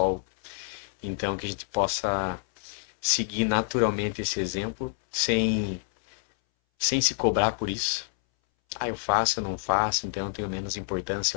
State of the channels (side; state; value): right; silent; 60 dB below the other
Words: Então que a gente possa seguir naturalmente esse exemplo sem sem se cobrar por isso. Ah, eu faço, eu não faço, então eu tenho menos importância,